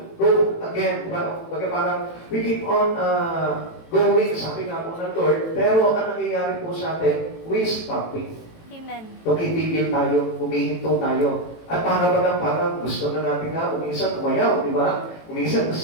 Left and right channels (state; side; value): late; right; 18 ms